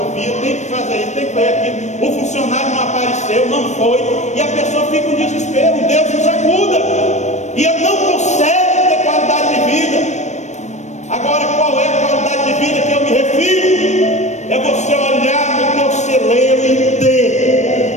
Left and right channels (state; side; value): late; right; 0.34 ms